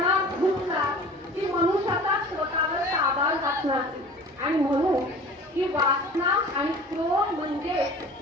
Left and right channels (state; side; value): normal; both; correlation 0.42